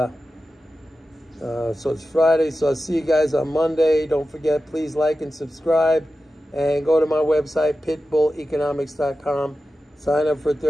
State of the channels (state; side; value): normal; both; correlation 0.93